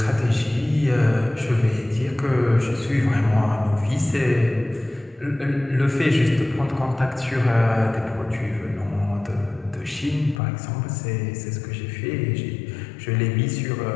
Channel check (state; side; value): drops out; right; at 10.4 s